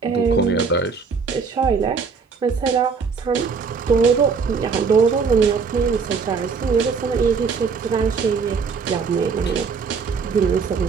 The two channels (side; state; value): left; quieter; 5.4 dB